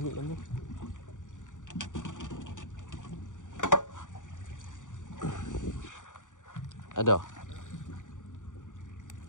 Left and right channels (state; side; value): late; right; 0.87 ms